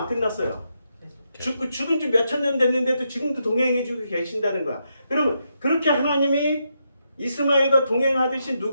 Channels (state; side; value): inverted; both; correlation -0.82